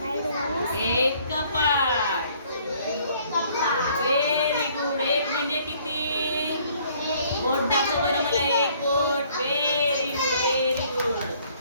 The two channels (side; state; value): both; inverted; correlation -0.61